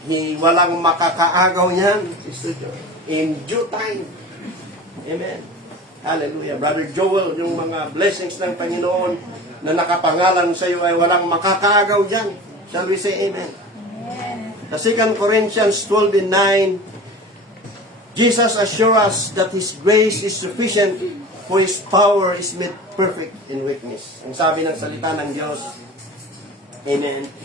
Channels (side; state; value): both; normal; correlation 0.36